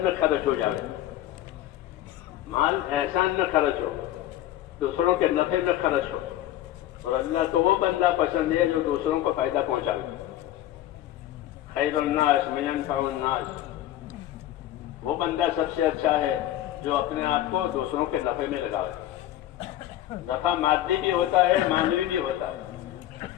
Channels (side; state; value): right; quieter; 13.4 dB